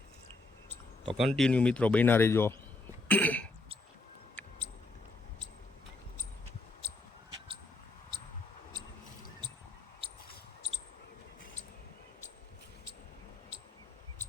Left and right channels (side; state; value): right; quieter; 3.1 dB